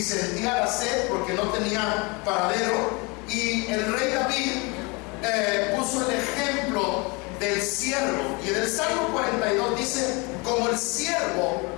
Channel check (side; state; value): right; quieter; 28.4 dB